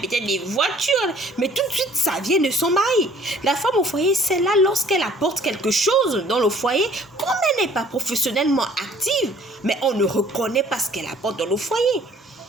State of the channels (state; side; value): normal; both; correlation 0.55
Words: peut-être des voitures. Mais tout de suite, ça vient de son mari. La femme au foyer, c'est là lorsqu'elle apporte quelque chose dans le foyer, comme elle n'est pas professionnellement active, mais on ne reconnaît pas ce qu'elle apporte dans le foyer.